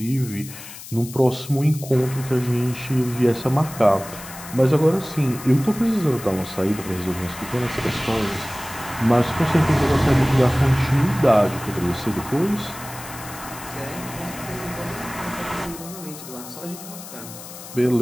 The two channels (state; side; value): noise; left; hiss, 14 dB below the sound